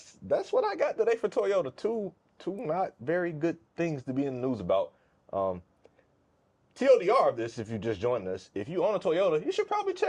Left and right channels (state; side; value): identical; both; correlation 1.00